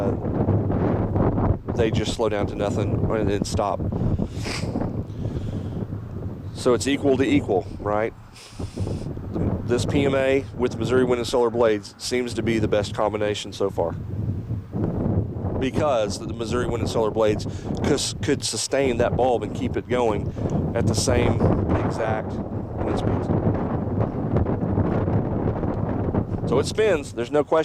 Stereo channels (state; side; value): identical; both; correlation 1.00